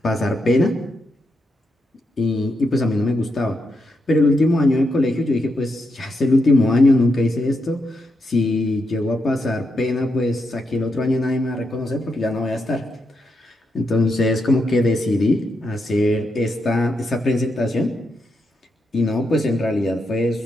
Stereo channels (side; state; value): both; normal; correlation 0.83